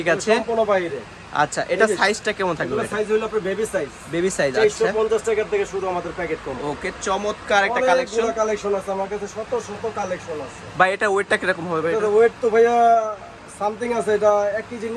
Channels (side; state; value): both; identical; correlation 1.00